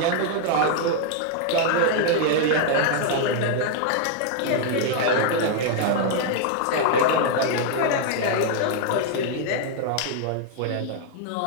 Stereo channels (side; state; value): both; different; correlation 0.00